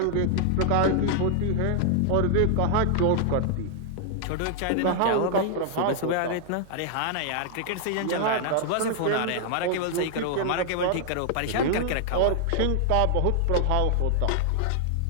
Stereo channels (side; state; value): both; different; correlation 0.00